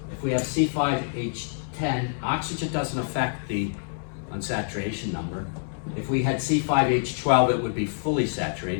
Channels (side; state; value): right; silent; digital silence